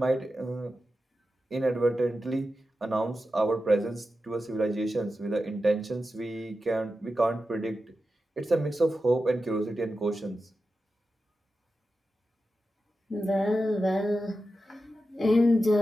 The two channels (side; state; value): both; normal; correlation 0.91